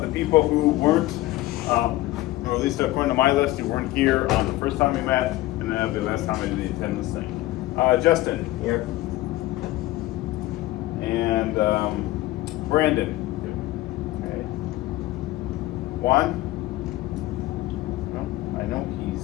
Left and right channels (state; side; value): quieter; right; 17.1 dB